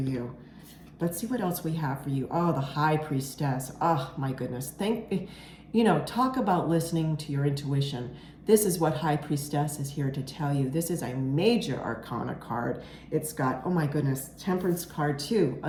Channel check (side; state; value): both; identical; correlation 1.00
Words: Let's see what else we have for you. Oh, the High Priestess. Oh, my goodness. Talk about listening to your intuition. This is what High Priestess is here to tell you. This is a major arcana card. It's got, oh my goodness, Temperance card too,